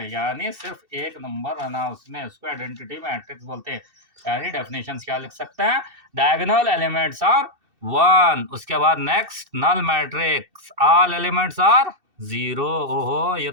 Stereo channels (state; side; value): late; left; 2.7 ms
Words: यानी सिर्फ एक नंबर रहना उसमें, उसको आइडेंटिटी मैट्रिक्स बोलते हैं। यानी डेफिनेशंस क्या लिख सकते हैं, डायगोनल एलिमेंट्स आर 1, उसके बाद next null matrix all elements are 0। ओहो, ये